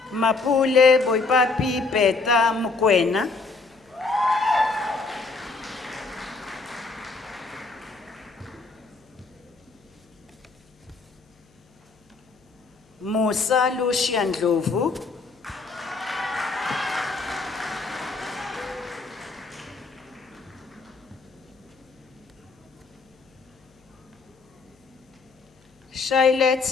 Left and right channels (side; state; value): right; quieter; 4.0 dB